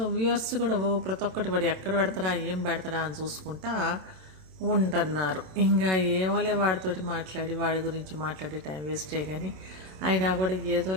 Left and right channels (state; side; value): late; left; 27 ms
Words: కూడా ప్రతి ఒక్కటి వాడు ఎక్కడ పెడతాడా ఏం పెడతాడా అని చూసుకుంటా ఉంటున్నారు. ఇంకా ఏమోలే వాడితోటి మాట్లాడి వాడి గురించి మాట్లాడి టైం వేస్టే. కానీ అయినా కూడా